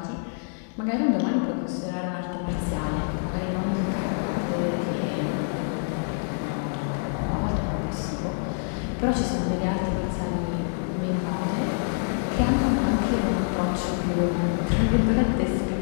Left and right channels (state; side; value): silent; right; digital silence